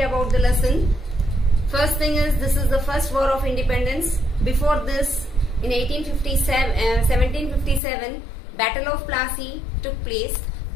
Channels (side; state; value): right; drops out; at 7.8 s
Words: about the lesson. First thing is, this is the first war of independence. Before this, in 1757, Battle of Plassey took place,